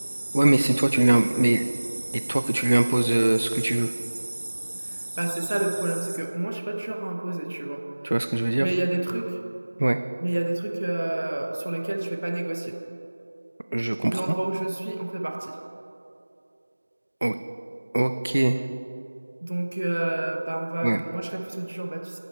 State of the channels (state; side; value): inverted; both; correlation -1.00